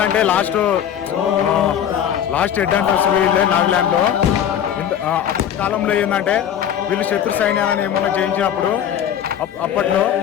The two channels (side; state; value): right; quieter; 9.6 dB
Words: లాస్ట్ హెడ్ హంటర్స్ వీళ్ళే నాగాలాండ్ లో. అప్పటి కాలంలో ఏంటంటే వీళ్ళు శత్రు సైన్యాలను ఏమన్నా జయించినప్పుడు అప్పట్లో